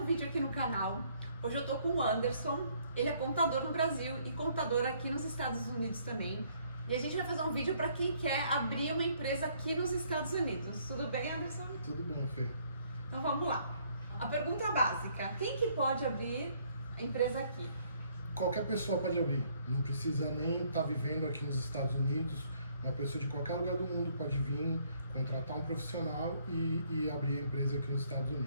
vídeo aqui no canal. Hoje eu tô com o Anderson, ele é contador no Brasil e contador aqui nos Estados Unidos também. E a gente vai fazer um vídeo para quem quer abrir uma empresa aqui nos Estados Unidos. Tudo bem, Anderson? Tudo bom, Fê. Então vamos lá. A pergunta básica, quem que pode abrir a empresa aqui? Qualquer pessoa pode abrir, não precisa nem estar vivendo aqui nos Estados Unidos. Uma pessoa de qualquer lugar do mundo pode vir, contratar um profissional e abrir a empresa aqui nos Estados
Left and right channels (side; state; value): both; inverted; correlation -0.65